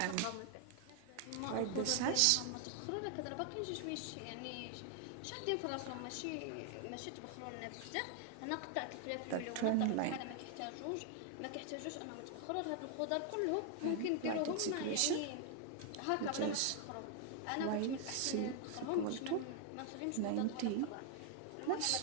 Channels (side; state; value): both; different; correlation 0.00